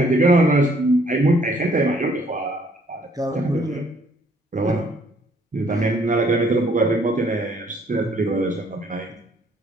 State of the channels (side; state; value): both; normal; correlation 0.63